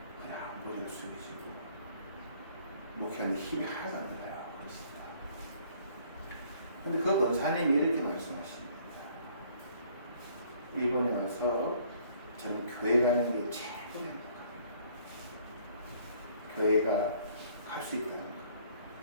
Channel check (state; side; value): inverted; both; correlation -0.60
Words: 그냥 머리를 숙이시고 목회하는데 힘이 하나도 안 들어요. 그렇습니다. 근데 그 권사님이 이렇게 말씀하십니다. 일본에 와서 저는 교회 가는 게 최고입니다. 교회가 갈 수 있다는 거.